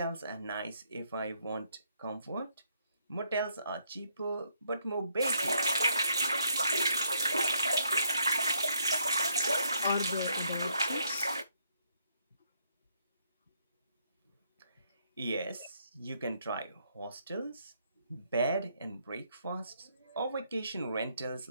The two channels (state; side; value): inverted; both; correlation -0.73